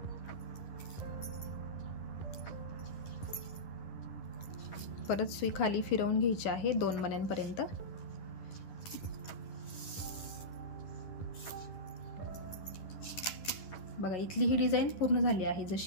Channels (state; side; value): late; right; 11 ms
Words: परत सुई खाली फिरवून घ्यायची आहे 2 मण्यांपर्यंत। बघा इथली ही डिझाइन पूर्ण झाली आहे,